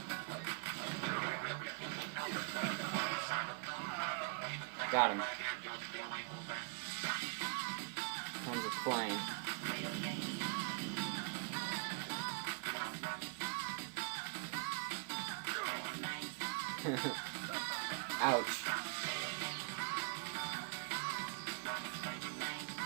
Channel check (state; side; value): quieter; left; 38.3 dB